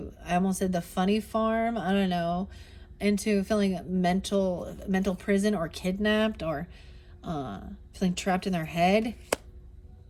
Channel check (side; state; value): both; identical; correlation 1.00